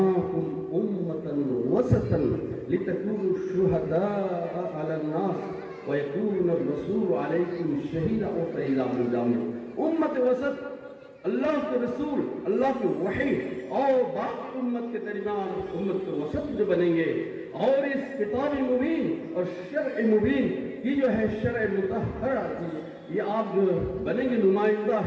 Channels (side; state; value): both; identical; correlation 1.00